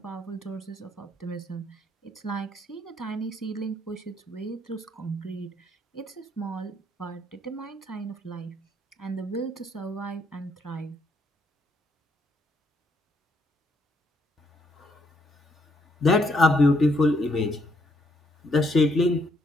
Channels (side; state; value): both; normal; correlation 0.72